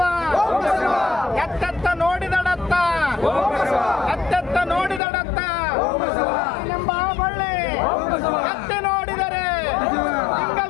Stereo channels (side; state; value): right; drops out; at 5.0 s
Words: ಎತ್ತೆತ್ತ ನೋಡಿದಡತ್ತ, ಎತ್ತೆತ್ತ ನೋಡಿದಡತ್ತ ಎಂಬ ಬಳ್ಳಿ ಎತ್ತಿ ನೋಡಿದರೆ